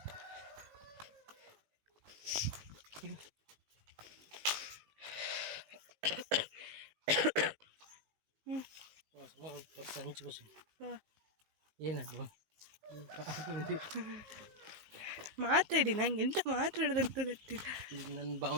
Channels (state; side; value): late; left; 19 ms